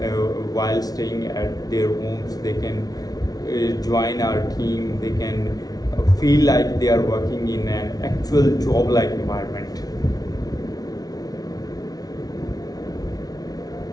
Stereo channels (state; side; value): late; right; 0.19 ms